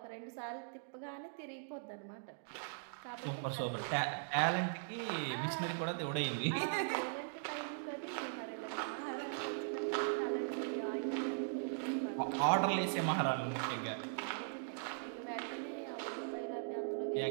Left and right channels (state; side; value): silent; left; digital silence